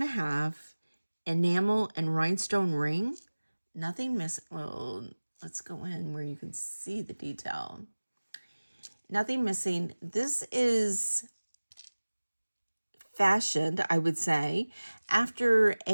enamel and rhinestone ring. Nothing missing. Well, let's go in where you can see the detail. Nothing missing. This is fashioned, I would say, after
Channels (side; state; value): both; inverted; correlation -1.00